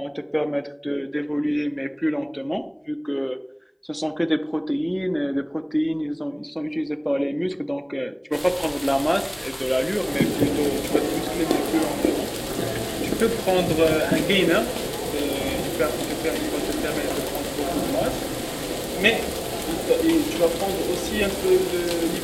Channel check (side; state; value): both; identical; correlation 1.00